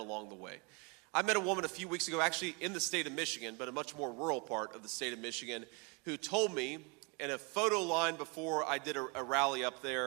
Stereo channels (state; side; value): quieter; left; 31.6 dB